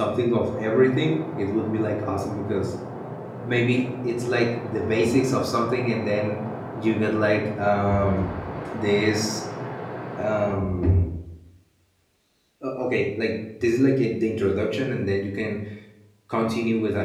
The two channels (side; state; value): both; identical; correlation 1.00